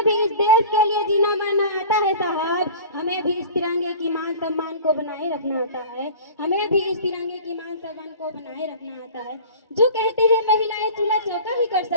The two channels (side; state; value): both; inverted; correlation -0.40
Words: भी इस देश के लिए जीना मरना आता है साहब, हमें भी इस तिरंगे की मान सम्मान को बनाए रखना आता है, हमें भी इस तिरंगे की मान सम्मान को बनाए रखना आता है। जो कहते हैं महिलाएं चूल्हा चौका ही कर